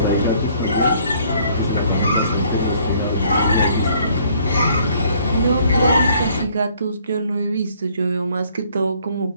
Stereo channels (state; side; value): inverted; both; correlation -0.62